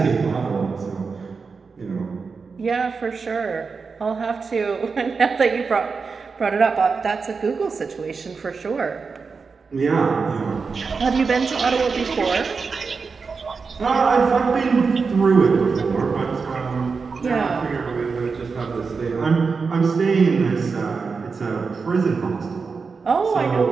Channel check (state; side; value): quieter; left; 4.9 dB